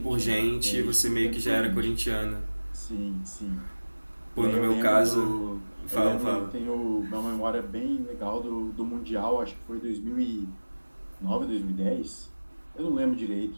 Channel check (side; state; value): both; inverted; correlation -1.00